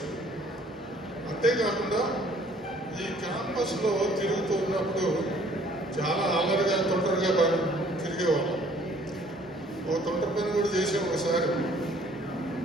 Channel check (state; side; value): normal; both; correlation 0.58